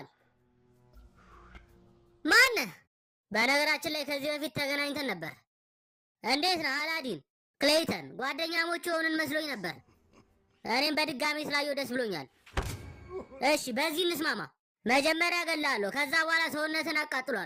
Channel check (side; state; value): both; identical; correlation 1.00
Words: ማነህ? በነገራችን ላይ ከዚህ በፊት ተገናኝተን ነበር። እንዴት ነህ አላዲን? ክሌይተን ጓደኛሞች የሆንን መስሎኝ ነበር። እኔም በድጋሚ ስላየው ደስ ብሎኛል። እሺ በዚህ እንስማማ። መጀመሪያ እገልሃለሁ፣ ከዛ በኋላ ሰውነትን